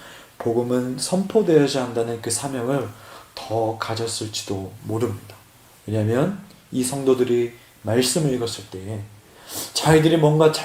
복음은 선포되어야 한다는 그 사명을 더 가졌을지도 모릅니다. 왜냐하면 이 성도들이 말씀을 읽었을 때에 자기들이 뭔가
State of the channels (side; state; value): both; identical; correlation 1.00